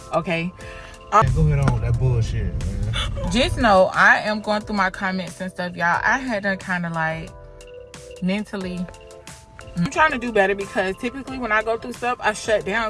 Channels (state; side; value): identical; both; correlation 1.00